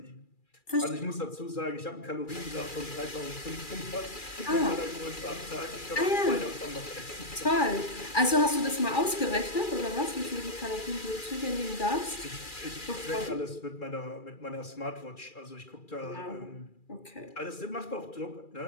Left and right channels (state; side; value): late; right; 2.4 ms